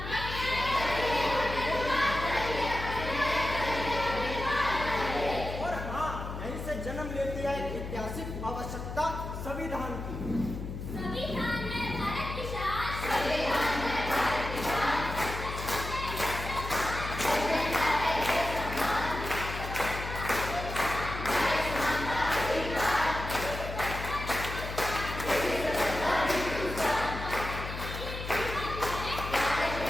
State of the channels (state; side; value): noise; left; hum, 7 dB below the sound